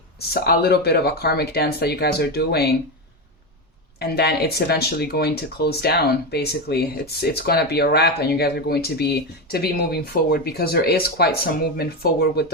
a little bit of a karmic dance that you guys are doing. And then it's eventually going to close down, basically. It's going to be a wrap, and you guys are going to be moving forward, because there is quite some movement forward with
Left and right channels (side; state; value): both; normal; correlation 0.14